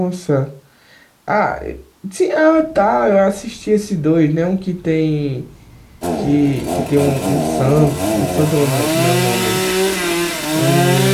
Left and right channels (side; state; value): both; identical; correlation 1.00